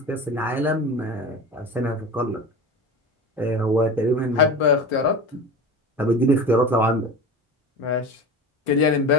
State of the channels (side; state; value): both; normal; correlation 0.31